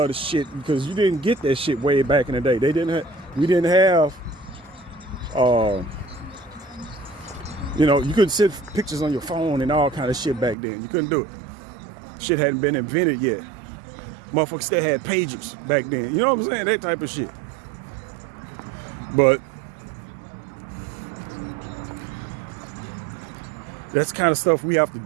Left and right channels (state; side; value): drops out; left; at 10.6 s